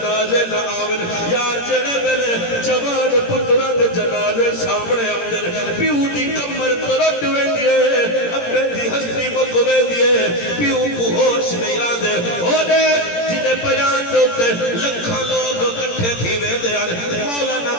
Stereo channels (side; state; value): right; late; 17 ms